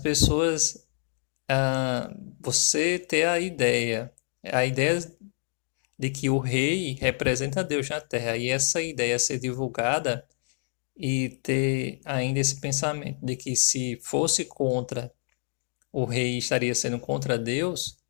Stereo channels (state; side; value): silent; right; digital silence